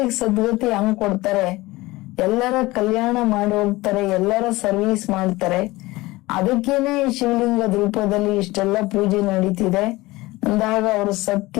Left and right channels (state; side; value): quieter; right; 20.2 dB